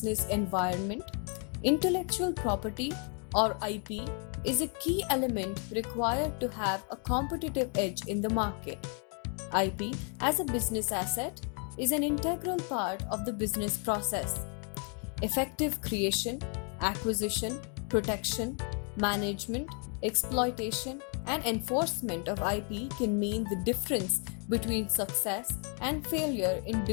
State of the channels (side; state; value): right; quieter; 39.8 dB